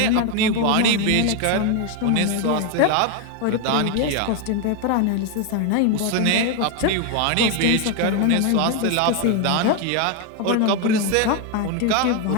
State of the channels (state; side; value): different; both; correlation 0.01